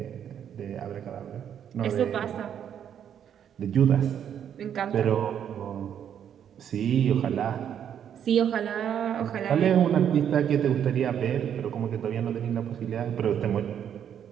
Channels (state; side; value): quieter; left; 9.0 dB